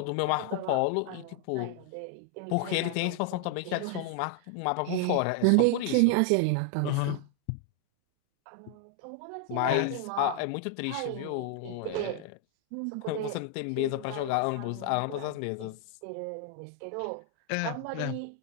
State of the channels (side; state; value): both; different; correlation 0.00